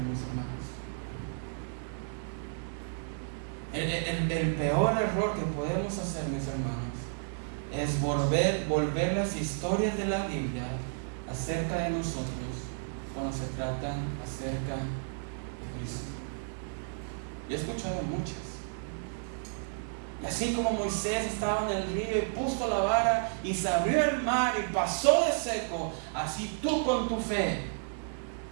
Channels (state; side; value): silent; left; digital silence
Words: mis hermanos. El peor error que podemos hacer, mis hermanos, es volver las historias de la Biblia acerca de nosotros cuando se tratan acerca de Cristo. Yo he escuchado muchas. Y así como Moisés estaba en el río y puso la vara y se abrió el mar y pasó de seco, así tú con tu fe